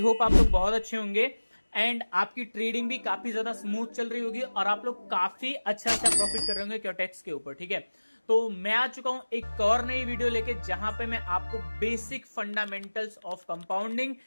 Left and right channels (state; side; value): inverted; both; correlation -1.00